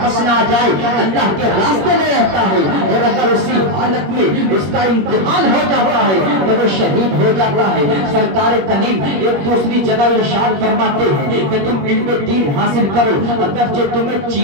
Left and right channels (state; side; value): late; left; 21 ms